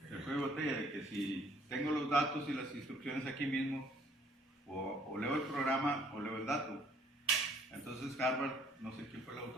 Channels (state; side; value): normal; both; correlation 0.61